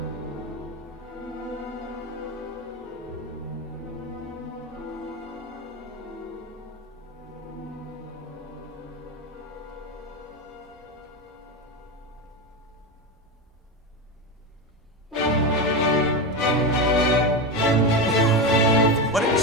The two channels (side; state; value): both; normal; correlation 0.16